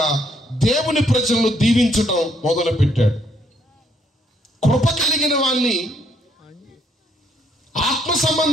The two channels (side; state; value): both; normal; correlation 0.70